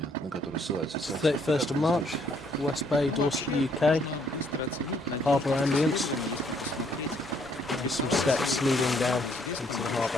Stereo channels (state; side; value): normal; both; correlation 0.67